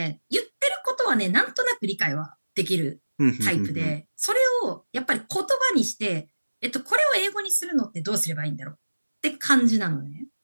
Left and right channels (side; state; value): both; inverted; correlation -1.00